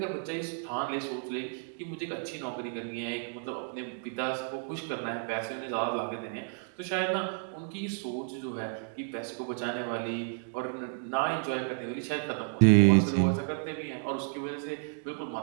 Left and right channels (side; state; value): left; silent; 57 dB below the other